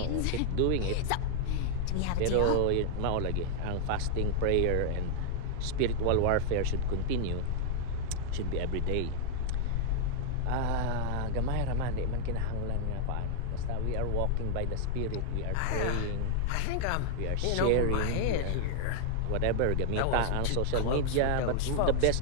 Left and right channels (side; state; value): both; different; correlation -0.01